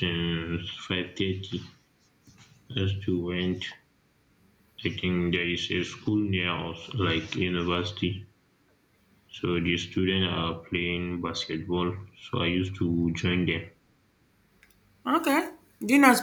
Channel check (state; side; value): identical; both; correlation 1.00